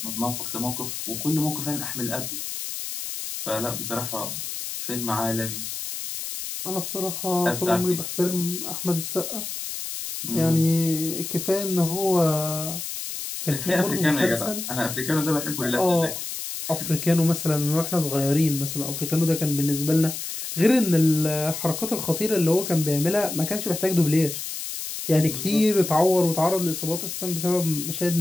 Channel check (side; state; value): left; noise; hiss, 6 dB below the sound